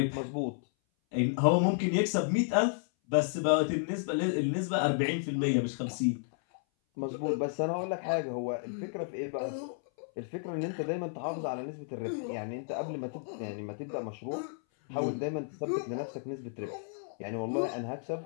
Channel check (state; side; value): silent; right; 56 dB below the other